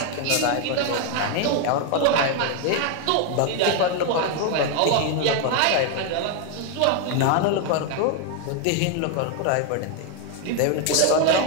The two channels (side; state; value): both; different; correlation 0.01